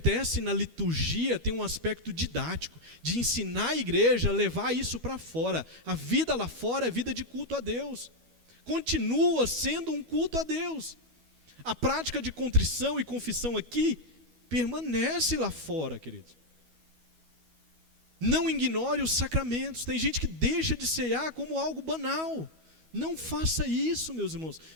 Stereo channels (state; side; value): late; left; 12 ms